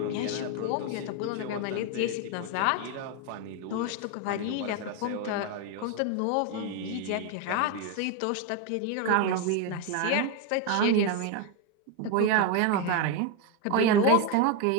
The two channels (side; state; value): both; different; correlation 0.02